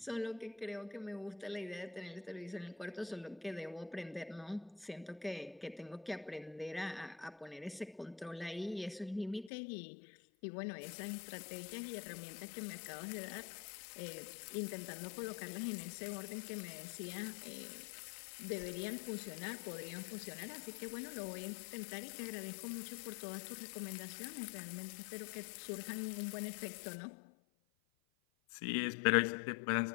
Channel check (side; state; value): right; drops out; at 9.5 s